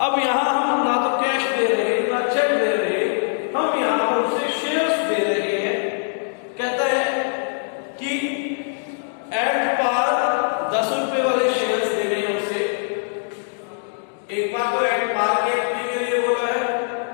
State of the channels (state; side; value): silent; right; digital silence